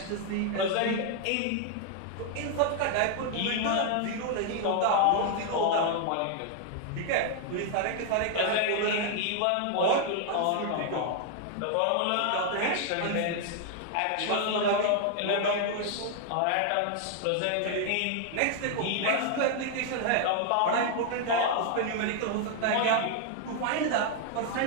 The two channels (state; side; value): different; both; correlation 0.00